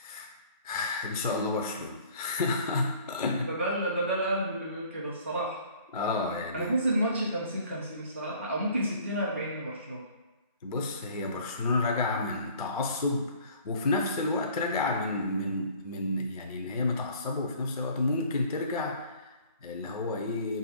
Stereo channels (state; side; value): inverted; both; correlation -0.52